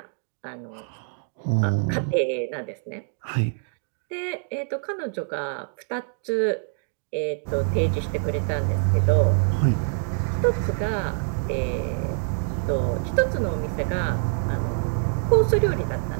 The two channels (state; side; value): silent; left; digital silence